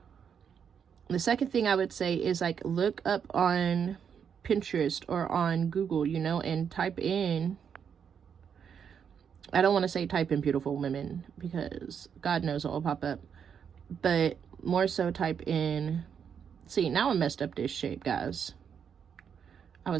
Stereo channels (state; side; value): quieter; left; 7.4 dB